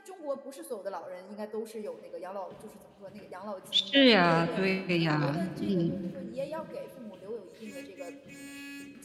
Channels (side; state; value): both; identical; correlation 1.00